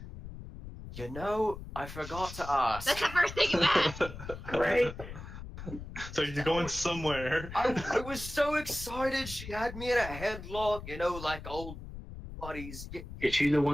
You know, I forgot to ask. That's the first thing you asked. Great. So you're going somewhere. I was so excited. She had me in a headlock, you know, like old buddies. Is she the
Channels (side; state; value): left; noise; rumble, 11 dB below the sound